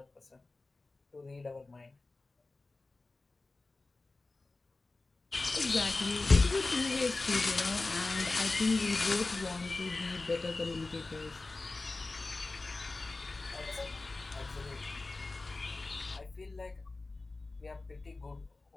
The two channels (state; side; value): quieter; right; 3.4 dB